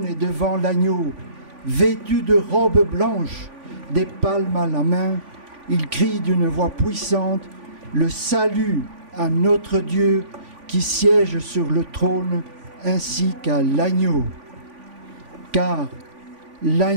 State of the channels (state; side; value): late; left; 3.5 ms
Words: et devant l'agneau, vêtus de robes blanches, des palmes à la main, ils crient d'une voix puissante, le salut à notre Dieu qui siège sur le trône, ainsi qu'à l'agneau. Car